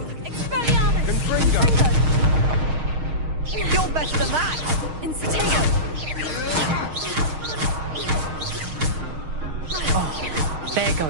Expelliarmus. Confringo. You're better than that! Incitego. Oh, there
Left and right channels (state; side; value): late; left; 6.5 ms